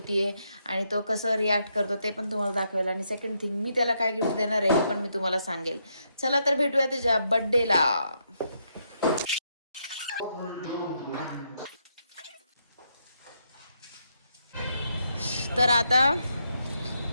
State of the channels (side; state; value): both; inverted; correlation -0.78